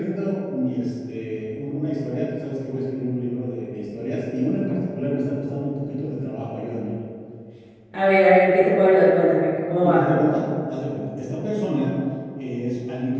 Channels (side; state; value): both; identical; correlation 1.00